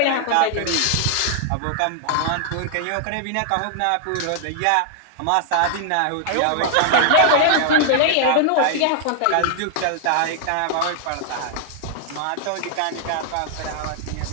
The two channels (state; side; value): different; both; correlation -0.01